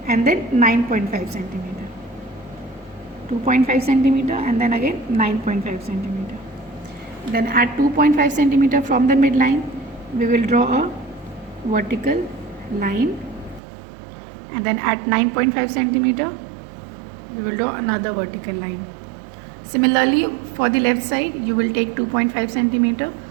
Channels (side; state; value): left; drops out; at 13.6 s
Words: and then 9.5 centimeter. 2.5 centimeter and then again 9.5 centimeter. Then at 2.5 centimeter from the midline, we will draw a vertical line, and then at 9.5 centimeter, we will draw another vertical line. Similarly, for the left side, you will take 2.5 centimeter